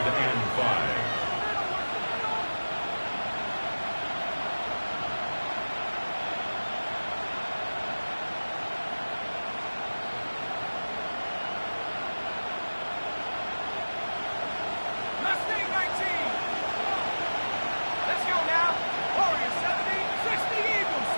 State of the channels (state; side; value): inverted; both; correlation -1.00